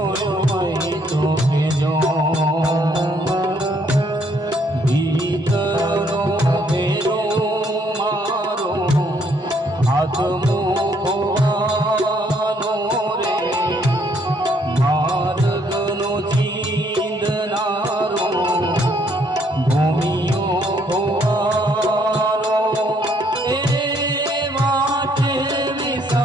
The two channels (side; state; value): both; normal; correlation 0.68